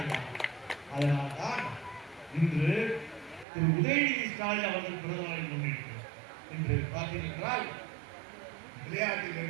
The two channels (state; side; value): drops out; left; at 3.5 s